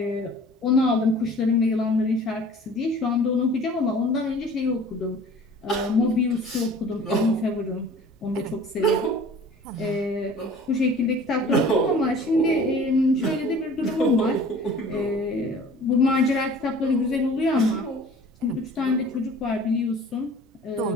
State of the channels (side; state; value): both; normal; correlation 0.47